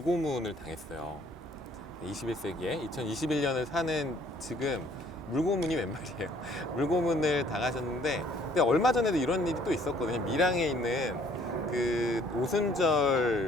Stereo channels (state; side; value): normal; both; correlation 0.60